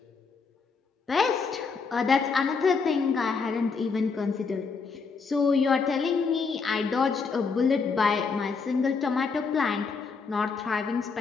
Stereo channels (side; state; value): right; quieter; 5.0 dB